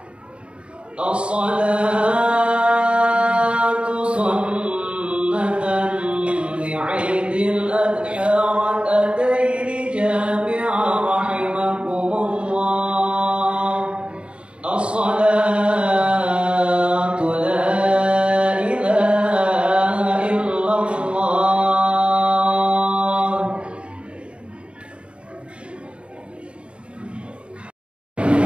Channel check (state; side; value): late; left; 0.057 ms